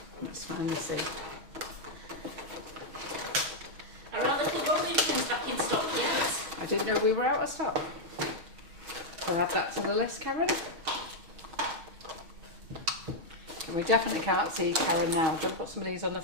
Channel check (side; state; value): left; late; 6.2 ms